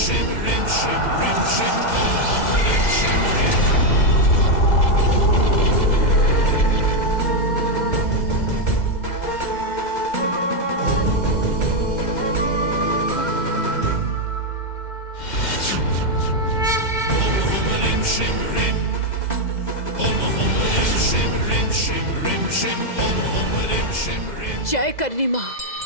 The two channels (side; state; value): right; late; 2.0 ms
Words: जय करनी माँ।